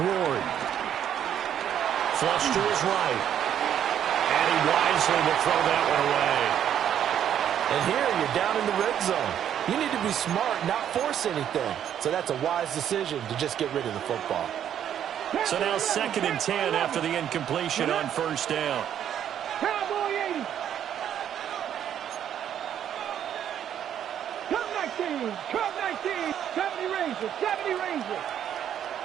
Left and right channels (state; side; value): quieter; left; 9.8 dB